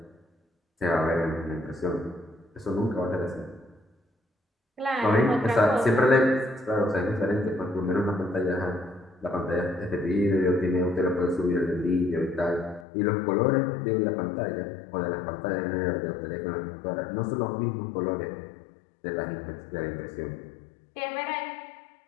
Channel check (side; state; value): right; drops out; at 12.9 s